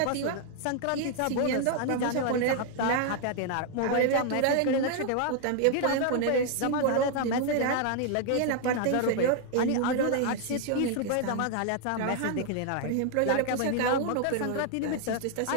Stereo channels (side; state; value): both; different; correlation 0.00